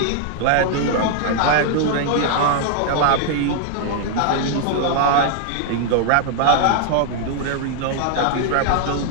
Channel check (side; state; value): both; different; correlation 0.00